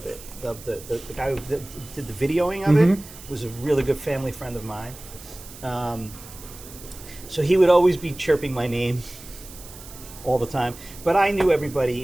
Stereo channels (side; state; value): right; noise; hiss, 17 dB below the sound